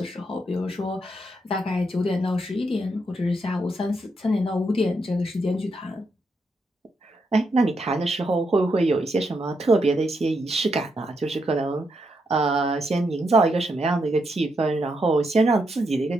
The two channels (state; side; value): normal; both; correlation 0.81